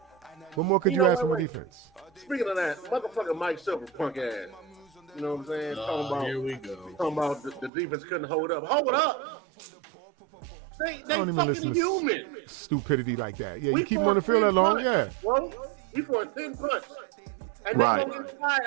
What more could you ask from the defense? Speaking of that, motherfucker Mike Silver, punk ass. You know what I'm saying? Here we go. Talking about the defense couldn't hold up. Hold up! They fucking human. Stupidity like that. Yeah, you keep them on the field that long, Well, he for a 10 punch. And they're going to get tired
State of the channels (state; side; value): drops out; left; at 7.7 s